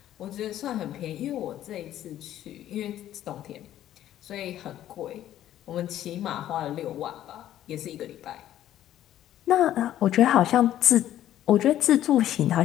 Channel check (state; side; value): quieter; right; 12.3 dB